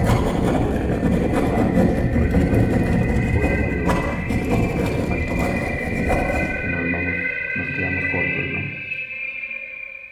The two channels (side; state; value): both; identical; correlation 1.00